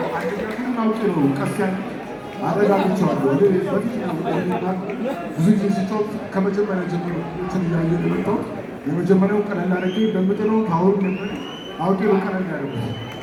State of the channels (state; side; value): identical; both; correlation 1.00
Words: አውቄ ነው ቀስ ያለ አረጋግቼዋለሁ። ብዙ ጊዜ ሲጫወት ከመጀመሪያ ጀምሮ እንትን እያየ የመጣሁት የመጀመሪያው ቀለል አድርጌ በምጥለው ታወሩ ነበር። አውቄ ነው ቀለል ያደረጉት